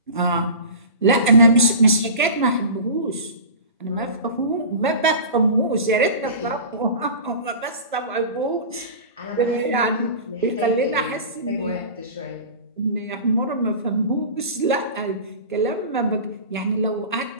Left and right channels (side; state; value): both; inverted; correlation -0.34